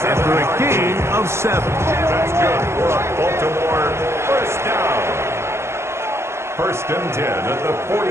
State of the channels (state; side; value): late; left; 0.13 ms